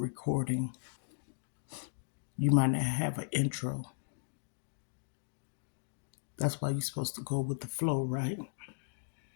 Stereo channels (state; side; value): silent; right; digital silence